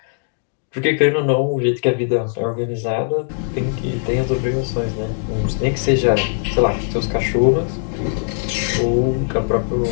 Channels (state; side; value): silent; right; digital silence